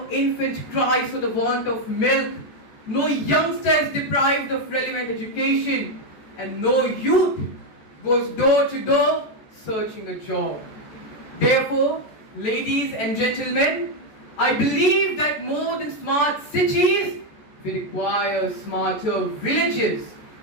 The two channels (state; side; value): late; right; 14 ms